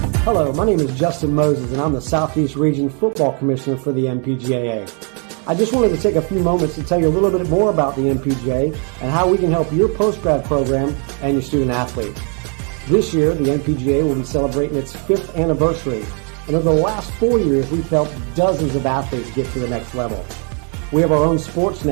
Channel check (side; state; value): left; quieter; 38.6 dB